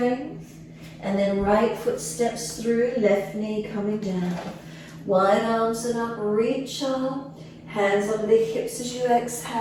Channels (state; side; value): identical; both; correlation 1.00